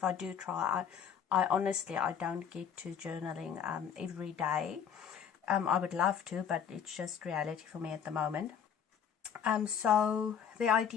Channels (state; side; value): quieter; right; 7.9 dB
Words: I do try, I honestly don't get to journaling every day. I would love to, but it's just reality for me at the moment. So the